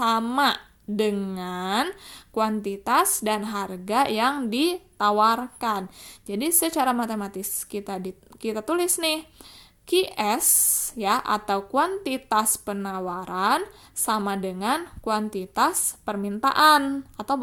dengan kuantitas dan harga yang ditawarkan. Jadi secara matematis kita tulis nih, QS ya, atau kuantitas penawaran sama dengan kuantitas permintaan, atau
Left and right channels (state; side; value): identical; both; correlation 1.00